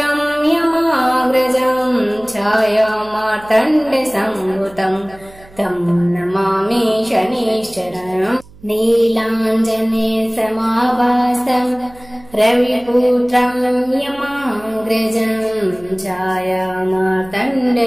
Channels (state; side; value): noise; right; hum, 24 dB below the sound